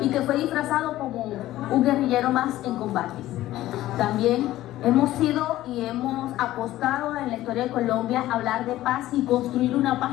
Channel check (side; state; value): right; quieter; 15.0 dB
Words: y que fue disfrazado como un guerrillero más en combate. También hemos sido y hemos apostado en la historia de Colombia a hablar de paz y construir una paz